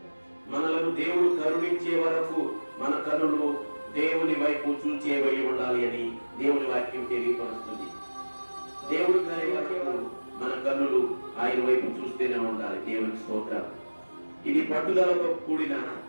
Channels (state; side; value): inverted; both; correlation -1.00